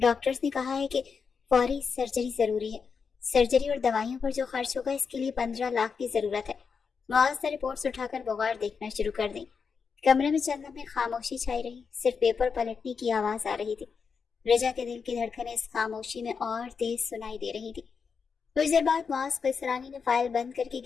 نے کہا ہے کہ فوری سرجری ضروری ہے۔ سرجری اور دوائیوں پر جو خرچ ہوگا اس کے لیے 15 لاکھ کی ضرورت ہے۔ معاذ نے رپورٹس اٹھا کر بغور دیکھنا شروع کر دی۔ کمرے میں چند لمحے خاموشی چھائی رہی، صرف پیپر پلٹنے کی آواز آ رہی تھی۔ رجا کے دل کی دھڑکنیں اس خاموشی میں اور تیز سنائی دے رہی تھی۔ کچھ دیر بعد معاذ قیصرانی نے فائل بند کر کے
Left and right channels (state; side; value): quieter; right; 5.7 dB